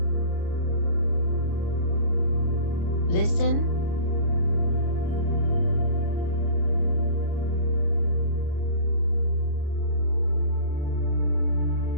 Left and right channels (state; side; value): late; right; 34 ms